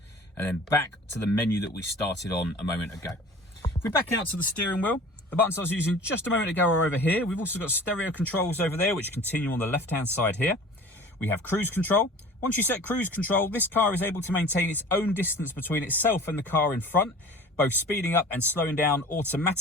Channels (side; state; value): both; normal; correlation 0.43